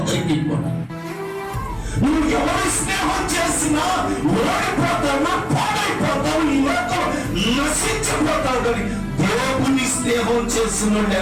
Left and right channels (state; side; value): identical; both; correlation 1.00